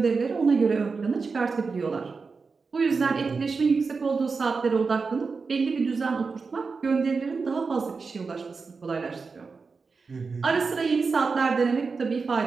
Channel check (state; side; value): quieter; left; 4.7 dB